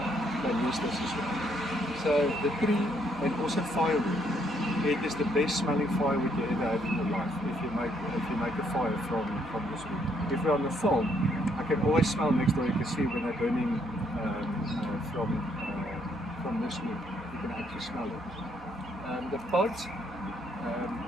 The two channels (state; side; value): normal; both; correlation 0.71